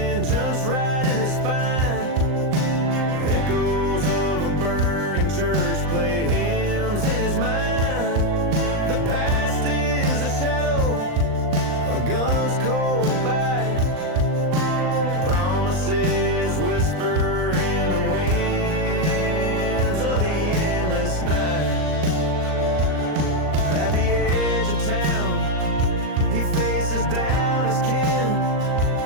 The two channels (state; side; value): late; left; 39 ms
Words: right in his spine. Echoes of a burning church play hymns in his mind. The past is a shadow, a gun's cold bite. Promises whisper in the winds of the endless night. At the edge of town, he faces down his kin.